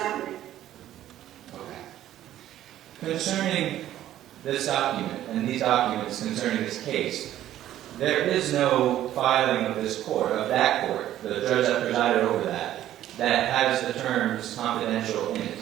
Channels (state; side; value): quieter; left; 12.6 dB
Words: me. Okay. Concerning this document and these documents concerning this case, there is no filing of this court, of that court, the judge that presided over that has the terms confidential in